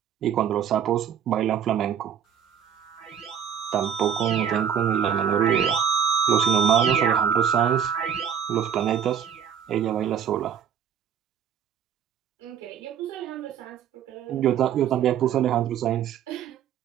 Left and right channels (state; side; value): quieter; left; 8.5 dB